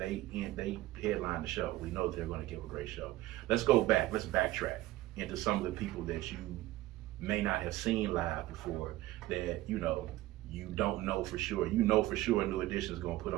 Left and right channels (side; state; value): left; quieter; 16.8 dB